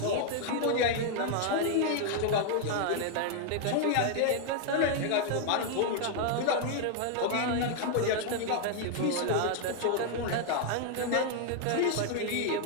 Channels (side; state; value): both; different; correlation 0.00